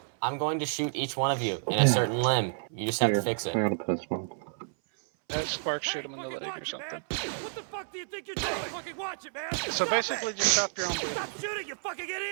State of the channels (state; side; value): silent; left; 58 dB below the other